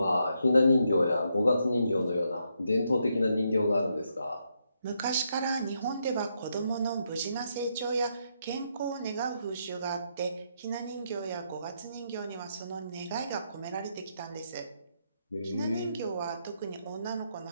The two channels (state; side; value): inverted; both; correlation -0.79